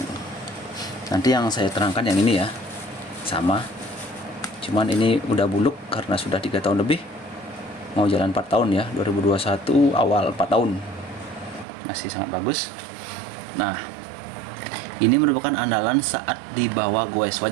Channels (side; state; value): left; drops out; at 11.7 s